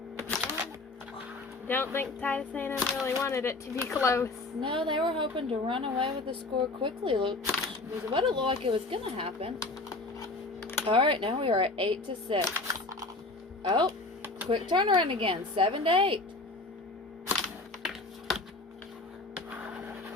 Don't think Titus A&M really wanted it to be close. No, they were hoping to run away with the score quickly. Look, was what it looked like it was going to happen. All right, now we are at 8-6. Oh, quick turnaround again, 7-8.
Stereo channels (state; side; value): quieter; right; 3.1 dB